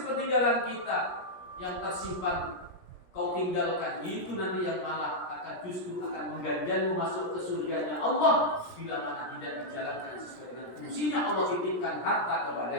kita yang tersimpan kau tinggalkan, itu nanti yang malah akan justru akan mengganjalmu masuk ke surganya Allah bila mana tidak dijalankan sesuai dengan fungsinya Allah titipkan harta kepada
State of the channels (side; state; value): right; late; 17 ms